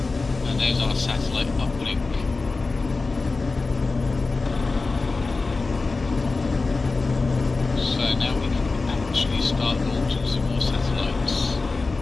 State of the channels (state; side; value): quieter; right; 3.8 dB